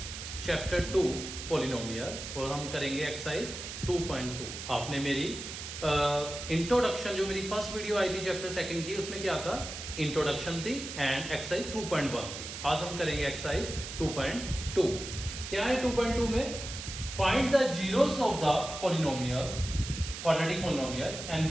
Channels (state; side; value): noise; right; hiss, 8 dB below the sound